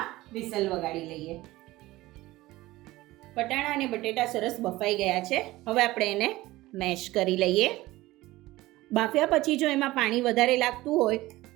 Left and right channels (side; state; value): left; quieter; 18.2 dB